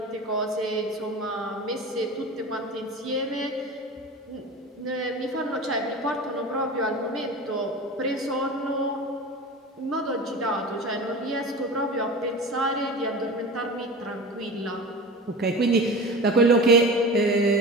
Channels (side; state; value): both; normal; correlation 0.33